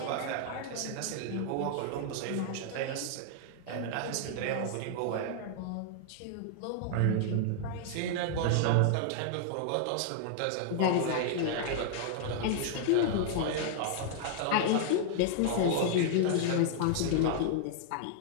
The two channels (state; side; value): different; both; correlation -0.01